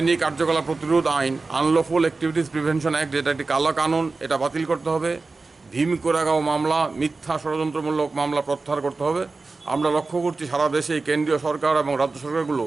কার্যকলাপ প্রতিরোধ আইন, আনলফুল অ্যাক্টিভিটিস প্রিভেনশন অ্যাক্ট, যেটা একটি কালো কানুন, এটা বাতিল করতে হবে। ভীম কোরেগাঁও মামলা, মিথ্যা ষড়যন্ত্রমূলক মামলা প্রত্যাহার করতে হবে। আমরা লক্ষ্য করছি সারা দেশে কেন্দ্রীয় সরকার এবং রাজ্য সরকারগুলো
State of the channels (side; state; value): left; quieter; 3.8 dB